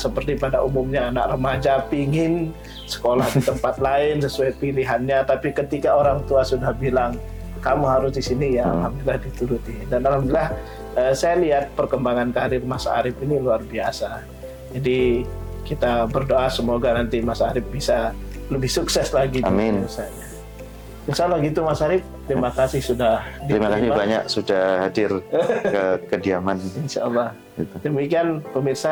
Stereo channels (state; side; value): identical; both; correlation 1.00